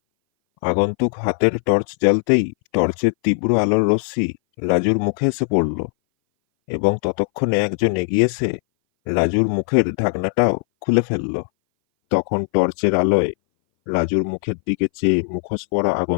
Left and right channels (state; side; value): silent; right; 60 dB below the other